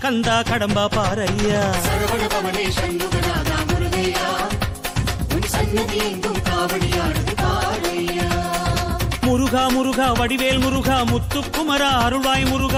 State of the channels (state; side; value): identical; both; correlation 1.00